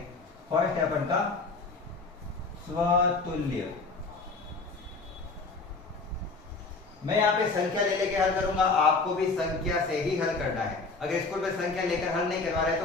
फर्स्ट है अपन का स्वतुल्य। मैं यहाँ पे संख्या ले लेके हल करूंगा, आपको भी संख्या से ही हल करना है। अगर स्कूल में संख्या लेकर हल नहीं करवा रहे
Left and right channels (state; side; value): quieter; right; 3.9 dB